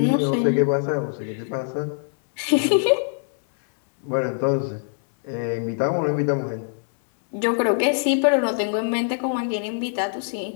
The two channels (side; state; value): right; silent; digital silence